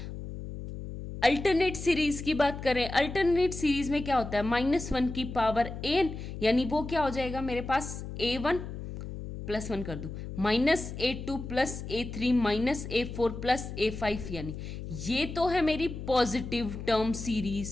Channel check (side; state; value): left; noise; hum, 9 dB below the sound